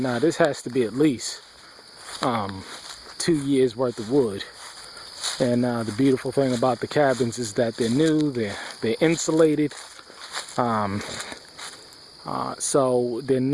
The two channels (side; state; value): both; identical; correlation 1.00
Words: Now this has to be at least 2 years worth of wood. And the beautiful thing about the cabins is that they're new, they're insulated, so they're